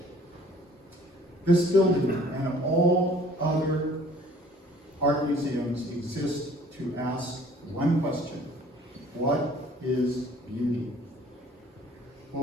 This building and all other art museums exist to ask one question: what is beauty?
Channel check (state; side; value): normal; both; correlation 0.54